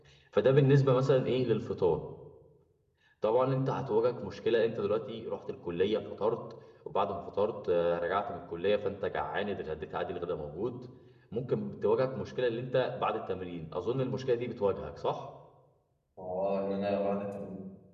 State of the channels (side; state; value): both; identical; correlation 1.00